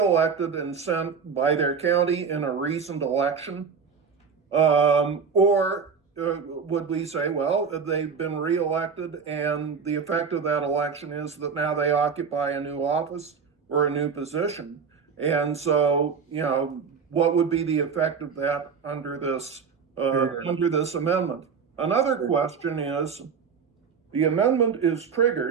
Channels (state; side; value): quieter; left; 6.0 dB